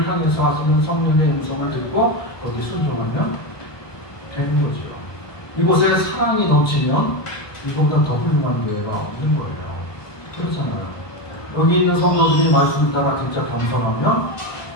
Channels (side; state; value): right; late; 1.2 ms